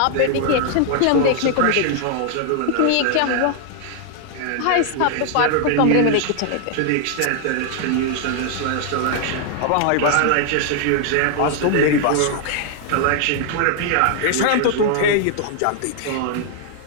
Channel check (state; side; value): different; both; correlation 0.00